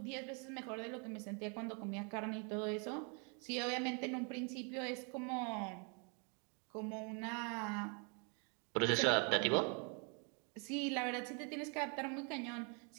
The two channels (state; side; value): quieter; left; 36.1 dB